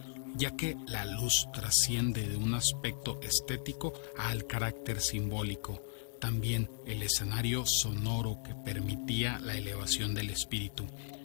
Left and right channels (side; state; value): right; silent; digital silence